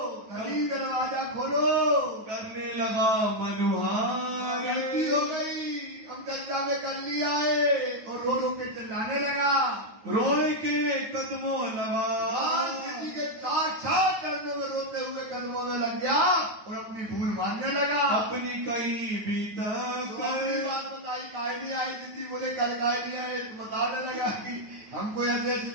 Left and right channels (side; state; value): left; late; 9.4 ms